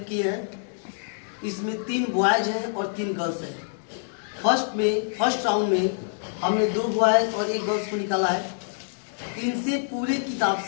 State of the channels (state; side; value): silent; right; 61 dB below the other